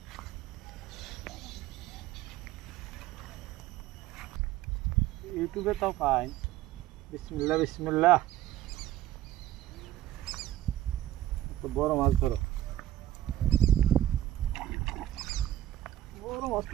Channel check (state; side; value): quieter; left; 13.3 dB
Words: ইউটিউবে তাও পাই। বিসমিল্লাহ বিসমিল্লাহ। বড় মাছ ধরো, বড় মাছ